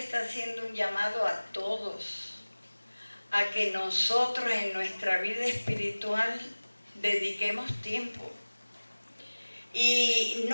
haciendo un llamado a todos, a que nosotros en nuestra vida espiritual dediquemos tiempo. Y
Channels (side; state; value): both; inverted; correlation -1.00